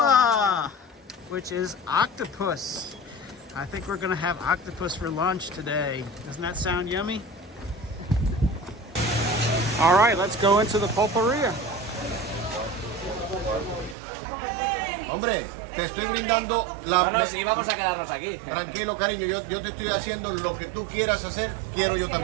which is octopus. I think we're gonna have octopus for lunch today. Doesn't that sound yummy? All right, let's go into the pulperia. Hombre, te estoy brindando la... No, sí, vamos a quedarnos aquí. Tranquilo, cariño, yo te estoy haciendo lo que tú quieras hacer, quiero yo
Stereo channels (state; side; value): drops out; left; at 14.0 s